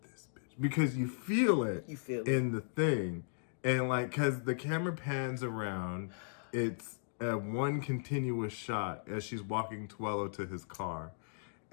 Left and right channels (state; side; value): silent; right; digital silence